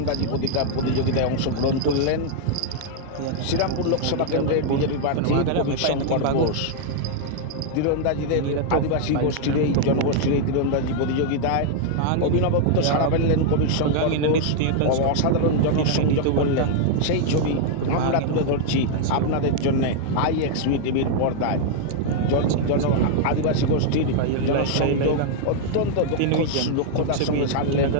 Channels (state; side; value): different; both; correlation 0.00